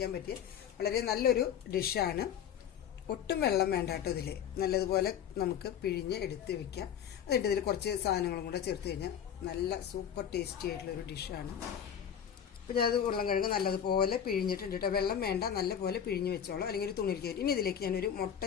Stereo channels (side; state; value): right; quieter; 8.8 dB